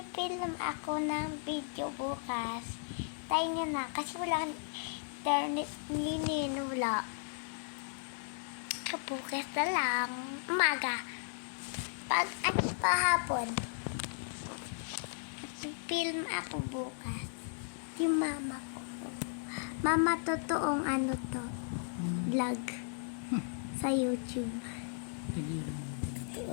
ako ng video bukas. Tayo nyo na, kasi wala internet ninin, wala. Bukas na lang, umaga. Pag hapon, magpipilm ako bukas. Yung mama ko. Mama, totoong ano to, vlog sa YouTube.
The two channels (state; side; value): silent; right; digital silence